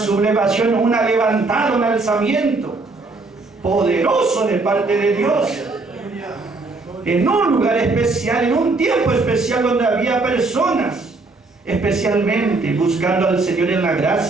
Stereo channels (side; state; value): left; quieter; 3.5 dB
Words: una levantada, un alzamiento poderoso de parte de Dios. En un lugar especial, en un tiempo especial donde había personas especialmente buscando al Señor en la